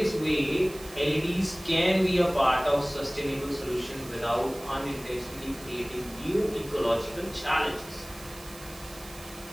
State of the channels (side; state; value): right; noise; hiss, 18 dB below the sound